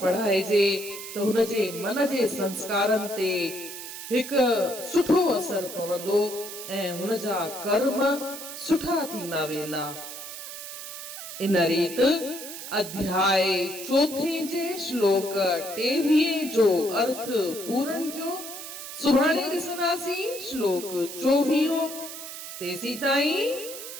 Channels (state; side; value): noise; right; hiss, 10 dB below the sound